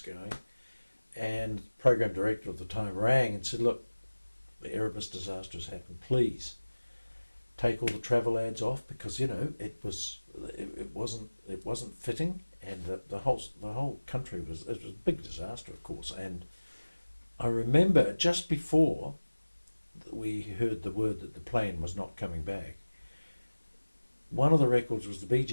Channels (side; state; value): both; inverted; correlation -1.00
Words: And the program director at the time rang and said, "Look, the Erebus disaster has happened. Please take all the travel ads off, because it wasn't fitting, and the whole country was a big disaster, of course." And I remember just before we heard the word that the plane was not coming back, one of the records was the Bee